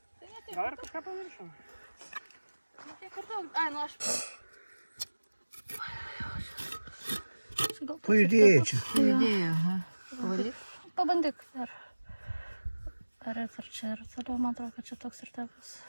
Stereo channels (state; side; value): inverted; both; correlation -1.00